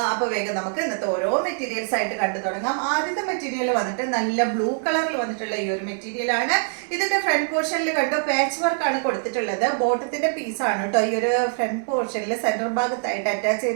അപ്പോൾ വേഗം നമുക്ക് ഇന്നത്തെ ഓരോ മെറ്റീരിയൽസ് ആയിട്ട് കണ്ടു തുടങ്ങാം. ആദ്യത്തെ മെറ്റീരിയൽ വന്നിട്ട് നല്ല ബ്ലൂ കളറിൽ വന്നിട്ടുള്ള ഈ ഒരു മെറ്റീരിയൽ ആണ്. ഇതിന്റെ ഫ്രണ്ട് പോർഷനിൽ കണ്ടോ പാച്ച് വർക്ക് ആണ് കൊടുത്തിട്ടുള്ളത്. ബോട്ടത്തിന്റെ പീസ് ആണ് കേട്ടോ ഈ ഒരു ഫ്രണ്ട് പോർഷനിൽ സെന്റർ ഭാഗത്തായിട്ട് അറ്റാച്ച്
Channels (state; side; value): silent; left; digital silence